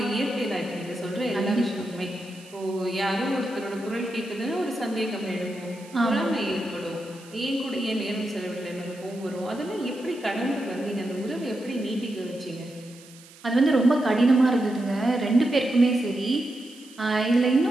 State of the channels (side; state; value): right; noise; hiss, 22 dB below the sound